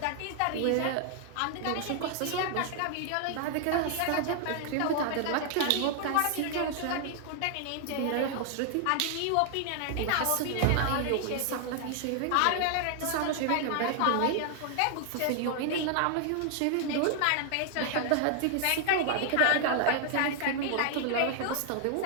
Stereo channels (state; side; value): different; both; correlation 0.00